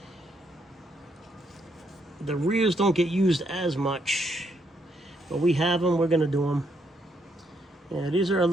rears don't get used as much, but we have them. We're going to do them. Yeah, these are a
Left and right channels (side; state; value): both; normal; correlation 0.75